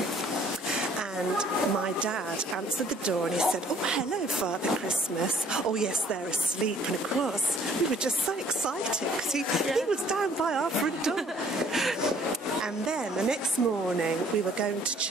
And my dad answered the door and he said, "Oh, hello, Father Christmas." "Oh, yes, they're asleep." And of course, we were just so excited because he was down by our front door. And then the next morning we were going to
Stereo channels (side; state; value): both; normal; correlation 0.59